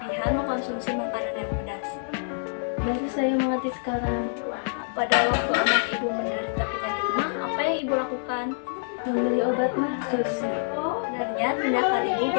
mengkonsumsi makanan yang pedas. Baru saya mengerti sekarang. Pada waktu anak Ibu menderita penyakit MA, apa yang Ibu lakukan? Membeli obat MA, Sus. Sebenarnya tindakan Ibu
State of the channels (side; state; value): right; silent; 61 dB below the other